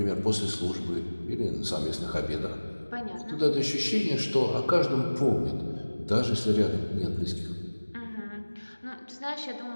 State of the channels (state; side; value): inverted; both; correlation -1.00